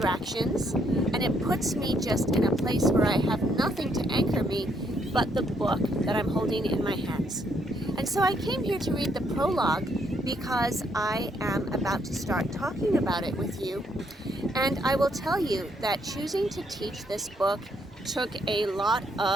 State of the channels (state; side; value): normal; both; correlation 0.72